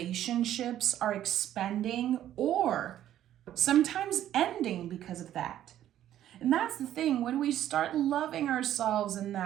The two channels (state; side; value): quieter; left; 11.9 dB